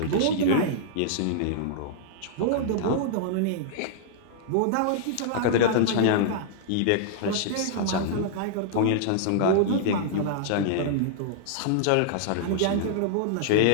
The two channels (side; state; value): both; different; correlation -0.02